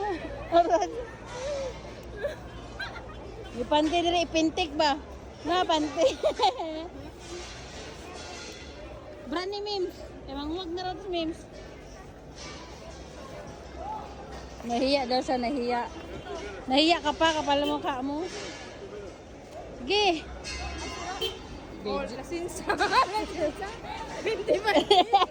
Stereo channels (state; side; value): identical; both; correlation 1.00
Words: Arad. Ipante diri ipintik ba? Na pante. Brand ni Mims. Emang huwag na rin Mims. Nahiya daw siya, nahiya. Nahiya ka pa, kapal mo ka mo. Sige. Oh, lasinsa. Lasinsa. Hindi ba?